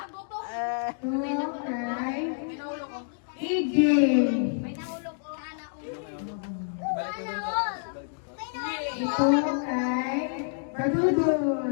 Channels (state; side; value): silent; right; digital silence